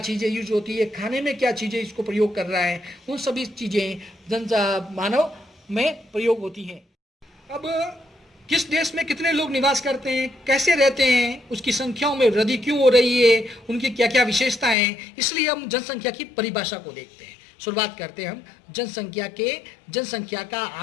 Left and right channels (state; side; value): drops out; right; at 14.8 s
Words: चीज़ें यूज होती है, खाने में क्या चीज़ें इसको प्रयोग कर रहा है, उन सभी चीज़ें मानव में प्रयोग होती हैं। अब किस देश में कितने लोग निवास करते हैं, कैसे रहते हैं, उसकी संख्याओं में वृद्धि क्यों हो रही है, उनकी क्या क्या विशेषताएं हैं, इसलिए हम जनसंख्या की परिभाषा को देखते हैं। शुरुआत करते हैं हम जनसंख्या का